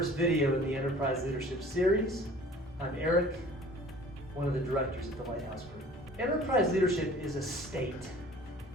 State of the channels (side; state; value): both; normal; correlation 0.48